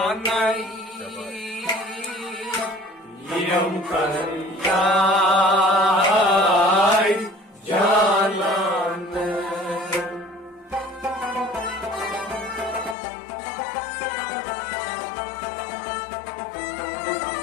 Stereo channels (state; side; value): drops out; right; at 13.0 s